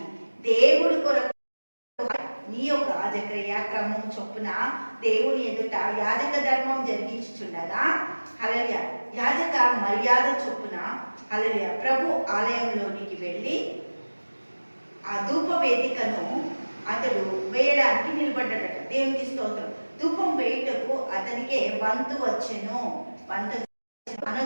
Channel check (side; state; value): both; inverted; correlation -1.00